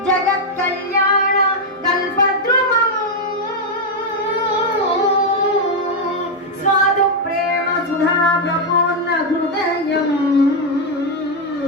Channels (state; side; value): normal; both; correlation 0.02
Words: जगत्कल्याण कल्पद्रुमम् स्वादु प्रेम सुधा प्रपूर्ण हृदयम्